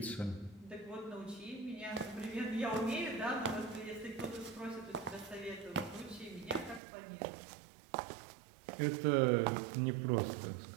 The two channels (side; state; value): left; drops out; at 6.8 s